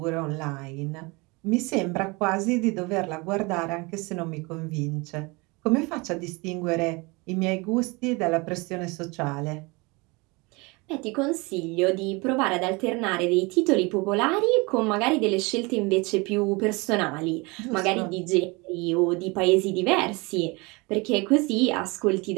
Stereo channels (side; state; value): left; quieter; 26.4 dB